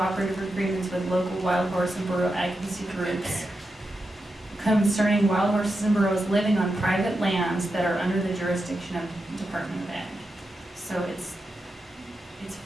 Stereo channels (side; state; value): both; normal; correlation 0.88